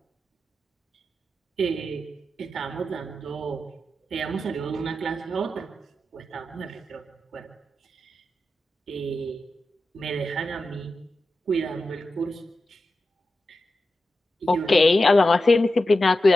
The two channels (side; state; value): both; normal; correlation 0.91